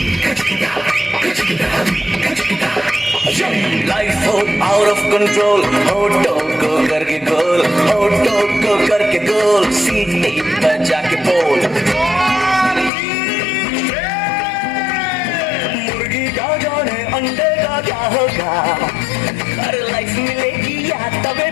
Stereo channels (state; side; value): drops out; right; at 12.9 s